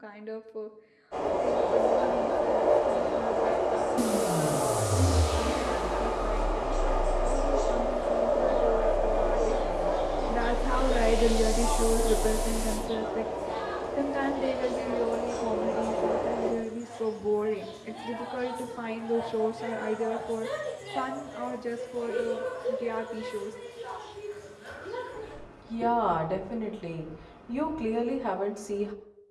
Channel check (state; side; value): identical; both; correlation 1.00